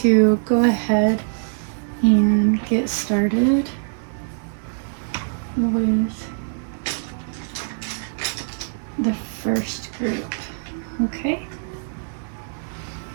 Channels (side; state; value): left; silent; digital silence